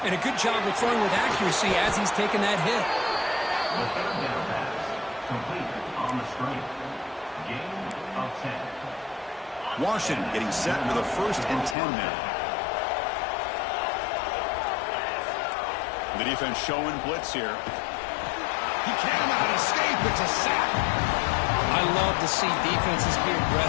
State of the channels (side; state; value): right; drops out; at 11.8 s